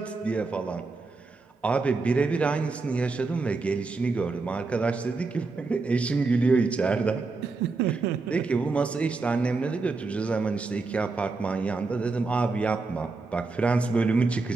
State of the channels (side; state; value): left; quieter; 3.9 dB